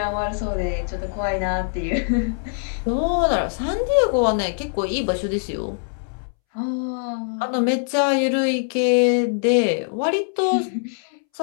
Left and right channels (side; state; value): right; silent; 64 dB below the other